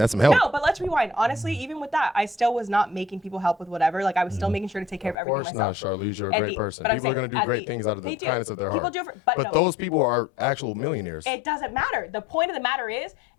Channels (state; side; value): drops out; right; at 5.2 s